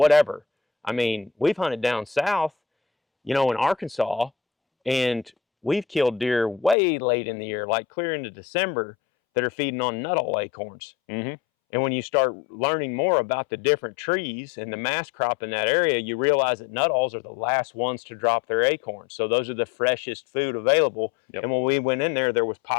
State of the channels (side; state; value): right; drops out; at 6.8 s